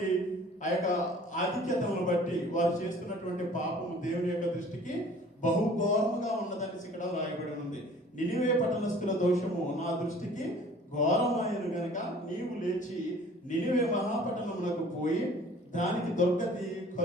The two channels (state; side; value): normal; both; correlation 0.50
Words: ఆ యొక్క ఆధిక్యతను బట్టి వారు చేస్తున్నటువంటి పాపము దేవుని యొక్క దృష్టికి బహుఘోరముగా ఉన్నదని ఇక్కడ రాయబడి ఉంది. నినివే పట్టణస్థుల దోషము నా దృష్టికి ఘోరమైన గనుక నీవు లేచి నినివే మహాపట్టణమునకు పోయి దానికి దుర్గతి